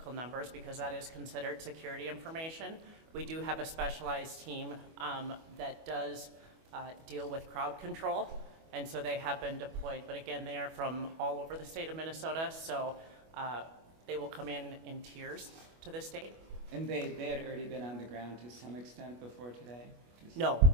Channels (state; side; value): late; left; 25 ms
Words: numbers because that is considered security information. We do have a specialized team that does deal with crowd control, and so they have been deployed. But again, they are from all over the state of Minnesota, so they will come in tiers to the state. And they had already been on the ground to some extent before today? No,